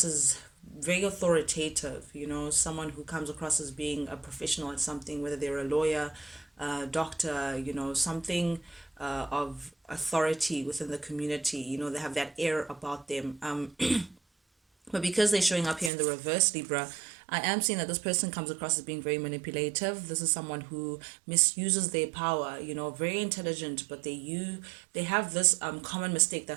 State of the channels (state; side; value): drops out; left; at 15.9 s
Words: as very authoritative, someone who comes across as being a professional at something, whether they're a lawyer, doctor, something of authority within the community. They have that air about them. But because they're showing up here in the reverse, Libra, I am seeing that this person comes across as being very manipulative. This is someone who misuses their power, very intelligent, but they have this common mistake